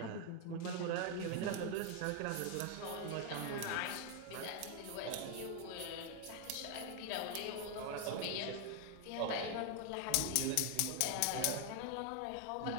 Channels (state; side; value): different; both; correlation 0.00